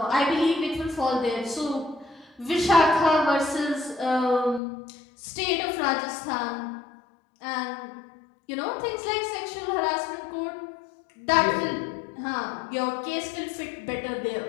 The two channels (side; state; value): right; drops out; at 4.6 s